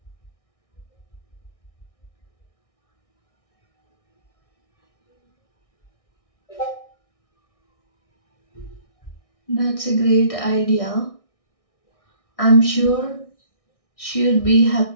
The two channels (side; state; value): right; late; 1.6 ms